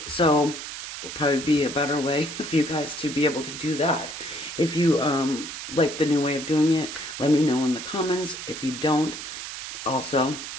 so will probably be a better way for you guys to be able to do that. If you like the new way of doing it, let me know in the comments. If you don't, also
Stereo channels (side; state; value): right; noise; hiss, 9 dB below the sound